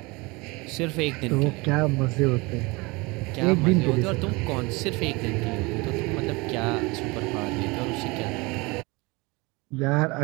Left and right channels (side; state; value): left; quieter; 25.2 dB